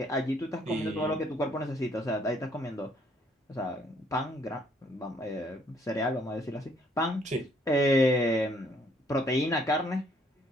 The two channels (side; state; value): both; normal; correlation 0.65